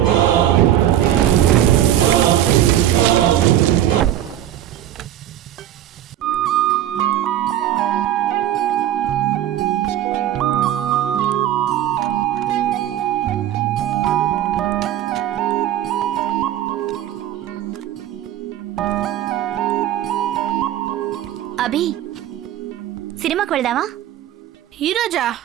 అభి, సినిమాకి వెళ్దామా? ఈరోజా?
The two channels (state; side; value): quieter; left; 11.9 dB